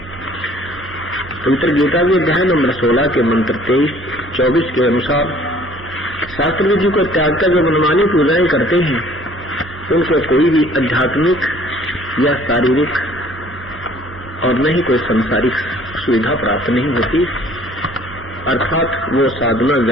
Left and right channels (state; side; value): normal; both; correlation 0.55